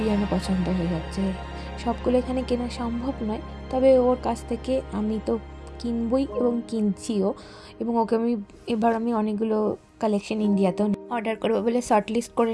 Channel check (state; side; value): identical; both; correlation 1.00